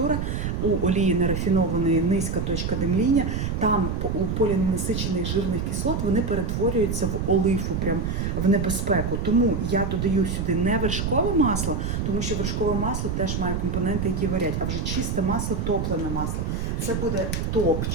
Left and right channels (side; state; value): right; noise; rumble, 1 dB below the sound